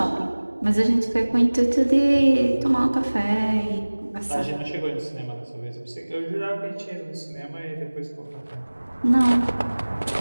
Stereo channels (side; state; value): both; inverted; correlation -1.00